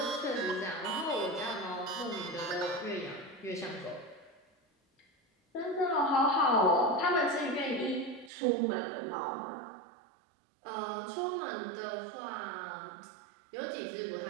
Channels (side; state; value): left; drops out; at 8.3 s